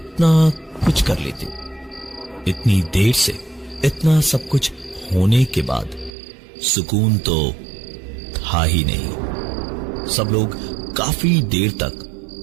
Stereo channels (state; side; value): drops out; left; at 6.1 s